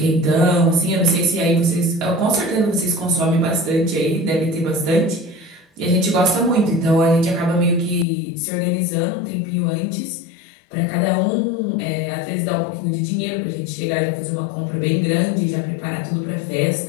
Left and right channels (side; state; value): right; drops out; at 8.1 s